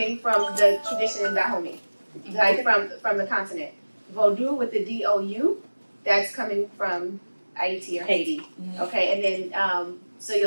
from the tradition in Dahomey, like from the continent. Vodou with the D-O-U, that's coming from Haiti or Haiti. Okay, and then so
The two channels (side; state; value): both; inverted; correlation -1.00